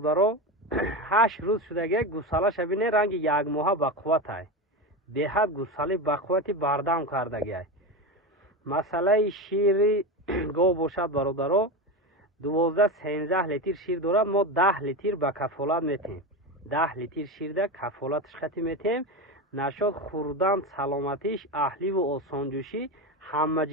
8 روز شدگی. گوساله‌ش بینه رنگ 1 ماه بقوت های به حد گوساله بقوتی بردم کردگی. مسئله شیر گو باشد برادرو 12-13 لیتر شیر دارد. ما 10 لیتر به کفالت میتیم. 10 لیتر شیر ده کفالتش خطی میتیم. نشد خوردن سلامتیش اهلی و آسانجوشی همه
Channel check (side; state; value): both; normal; correlation 0.19